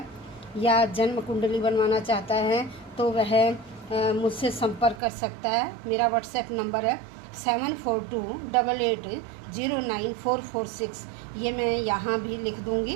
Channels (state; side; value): drops out; left; at 5.0 s